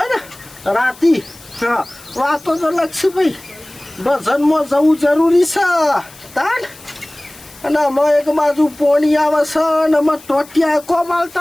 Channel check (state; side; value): noise; left; hiss, 22 dB below the sound